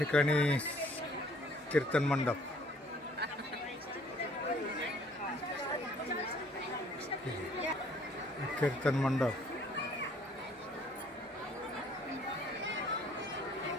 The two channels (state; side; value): normal; both; correlation 0.59